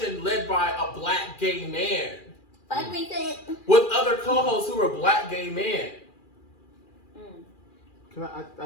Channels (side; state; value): right; late; 2.4 ms